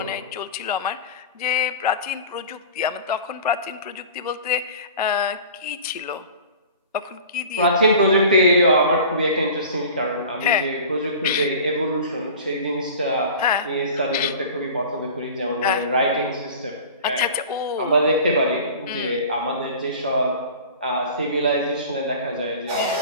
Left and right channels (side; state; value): both; inverted; correlation -0.40